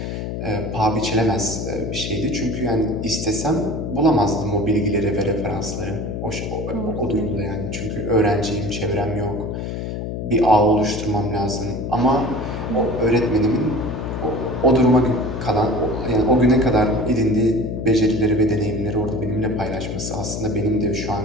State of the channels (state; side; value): noise; left; hum, 5 dB below the sound